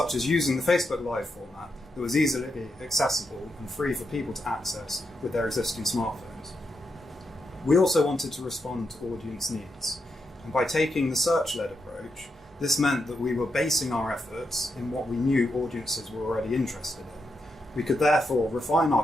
as using the Facebook Live format that was easily accessible and free for people to access with their existing smartphones. We also wanted to respond to audience needs, and by taking the search-led approach, this meant that we were basing our efforts in what we knew audiences were already interested in. We could therefore refine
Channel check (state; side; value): normal; both; correlation 0.84